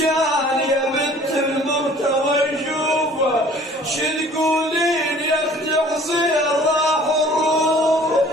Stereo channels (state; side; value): normal; both; correlation 0.51